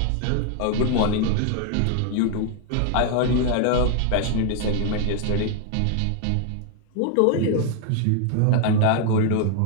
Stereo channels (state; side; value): different; both; correlation 0.00